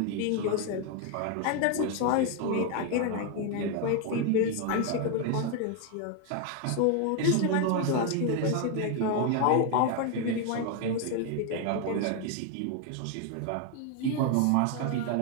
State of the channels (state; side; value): different; both; correlation 0.01